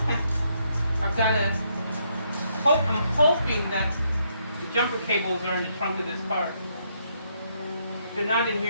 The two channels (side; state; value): both; inverted; correlation -0.75